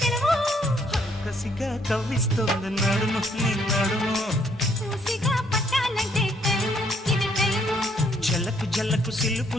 సెలవు కసిగా కవ్విస్తోంది నడుము నీ నడుము మూసిగా పట్టాలంటే టైము ఇది టైము జలకు జలకు సిలుపు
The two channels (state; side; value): normal; both; correlation 0.68